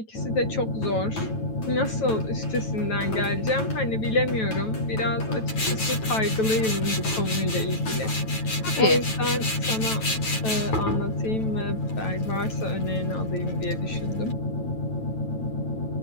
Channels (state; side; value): late; right; 9.1 ms